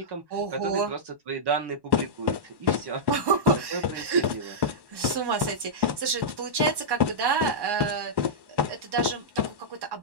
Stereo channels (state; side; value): late; left; 1.1 ms